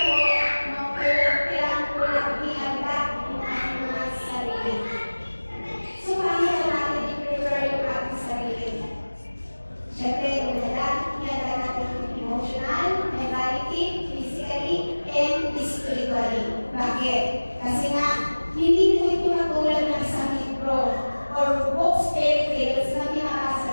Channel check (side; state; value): both; inverted; correlation -1.00